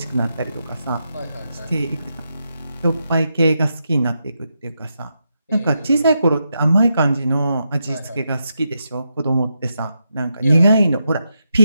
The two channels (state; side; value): inverted; both; correlation -0.85